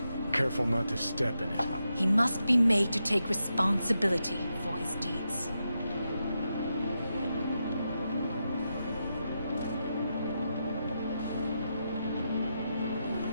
Careful not to step in it. He must be made to take responsibility for his deeds.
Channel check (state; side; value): inverted; both; correlation -0.86